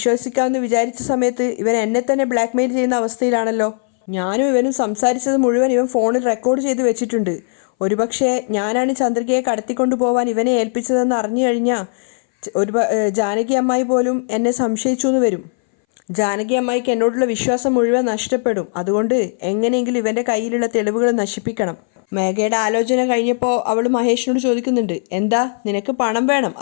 വിചാരിച്ച സമയത്ത് ഇവൻ എന്നെ തന്നെ ബ്ലാക്ക് മെയിൽ ചെയ്യുന്ന അവസ്ഥയിലാണല്ലോ. ഞാനും ഇവനും സംസാരിച്ചത് മുഴുവൻ ഇവൻ ഫോണിൽ റെക്കോർഡ് ചെയ്ത് വെച്ചിട്ടുണ്ട്. ഒരുപക്ഷെ ഞാനാണ് ചന്ദ്രികയെ കടത്തിക്കൊണ്ടു പോകാൻ ഇവനെ ഏൽപ്പിച്ചതെന്ന് അറിഞ്ഞു കഴിഞ്ഞാൽ ജാനകി അമ്മായി പോലും എന്നെ സംശയിച്ചു എന്ന് വരും. ജാനകി അമ്മായിക്ക് എന്നോടുള്ള വിശ്വാസം മുഴുവൻ നഷ്ടപ്പെടും. അതുകൊണ്ട് എങ്ങനെയെങ്കിലും ഇവൻ്റെ കയ്യിലുള്ള തെളിവുകൾ നശിപ്പിക്കണം. മേഘയുടെ ആലോചന കഴിഞ്ഞപ്പോൾ അവൾ മഹേഷിനോട് ചോദിക്കുന്നുണ്ട്, എന്താ നിനക്ക് പണം വേണം,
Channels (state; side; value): silent; right; 62 dB below the other